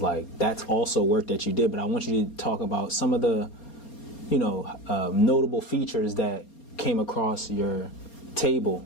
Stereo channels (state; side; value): late; right; 4.3 ms